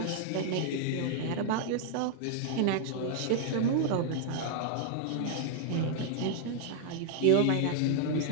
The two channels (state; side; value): different; both; correlation -0.01